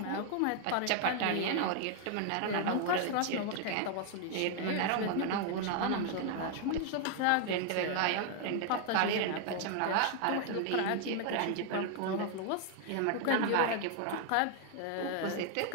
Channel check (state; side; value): different; both; correlation 0.00